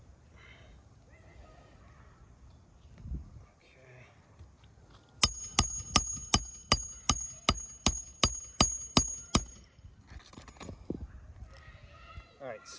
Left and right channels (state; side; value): identical; both; correlation 1.00